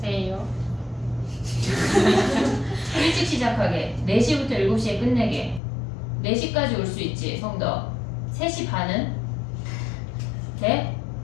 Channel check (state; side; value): drops out; right; at 5.6 s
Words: 에요. 일찍 시작하게. 4시부터 7시에 끝내게. 4시까지 올 수 있지, 성덕. 3시 반은? 돼?